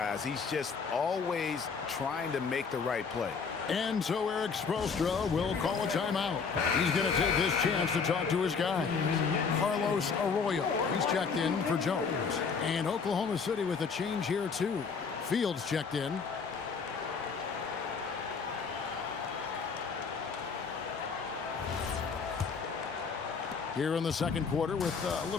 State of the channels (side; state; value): right; quieter; 5.5 dB